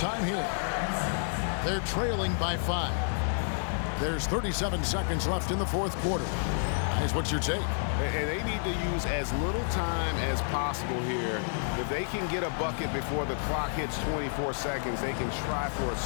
here. They're trailing by 5. There's 37 seconds left in the fourth quarter. Guys, what's your take? And they need to use as little time as possible here. If they can get a bucket before the clock hits 24 seconds, they can try for a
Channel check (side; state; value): right; silent; digital silence